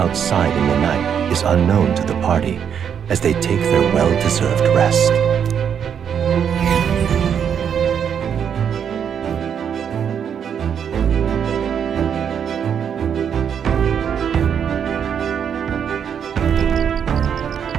outside in the night is unknown to the party as they take their well-deserved rest.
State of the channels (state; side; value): quieter; left; 8.0 dB